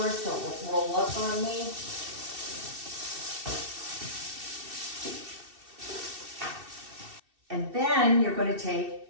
so it will roll up on me. And then you're going to take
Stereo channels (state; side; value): late; left; 2.7 ms